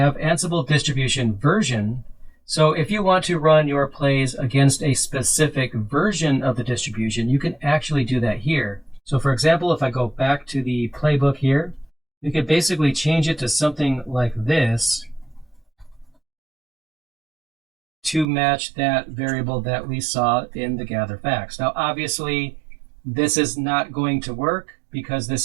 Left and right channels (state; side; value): drops out; left; at 18.2 s